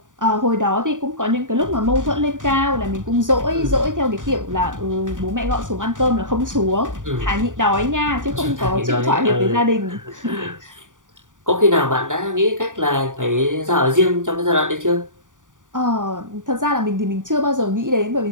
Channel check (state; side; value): late; left; 0.88 ms